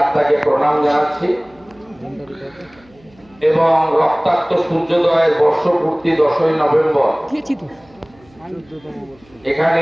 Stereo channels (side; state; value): right; noise; hum, 29 dB below the sound